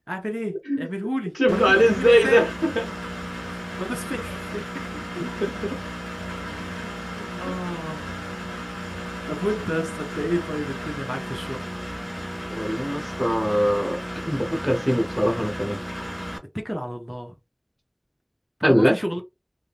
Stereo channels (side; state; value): both; identical; correlation 1.00